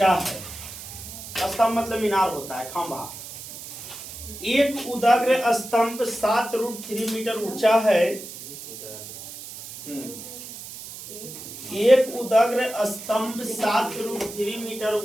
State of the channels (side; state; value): right; noise; hiss, 12 dB below the sound